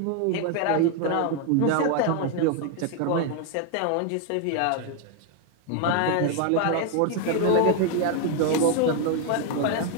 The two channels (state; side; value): different; both; correlation 0.01